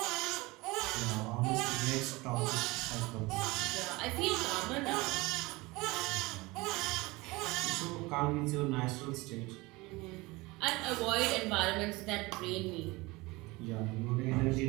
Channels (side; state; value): left; quieter; 22.7 dB